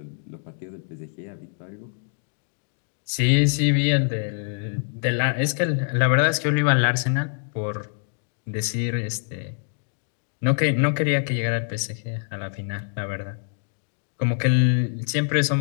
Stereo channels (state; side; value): silent; right; digital silence